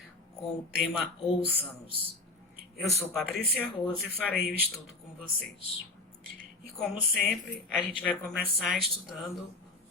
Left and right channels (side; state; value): right; quieter; 3.0 dB